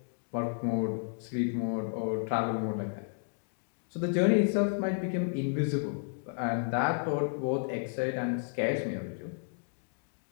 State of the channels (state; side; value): silent; right; digital silence